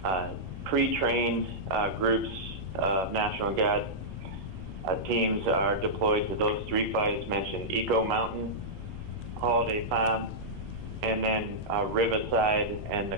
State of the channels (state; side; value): normal; both; correlation -0.11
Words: pre-trained groups of National Guard teams are deployed to those three fires mentioned: Eco Mountain, Holiday Farm, and then Riverside and the